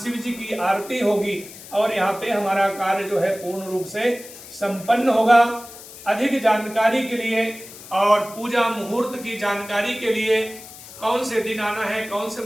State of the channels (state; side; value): noise; left; hiss, 16 dB below the sound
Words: जी की आरती होगी और यहाँ पे हमारा कार्य जो है पूर्ण रूप से संपन्न होगा। अधिक जानकारी के लिए और पूजा मुहूर्त की जानकारी के लिए, कौन से दिन आना है, कौन से